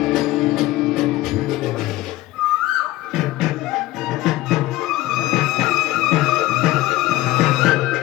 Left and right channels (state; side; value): quieter; right; 17.1 dB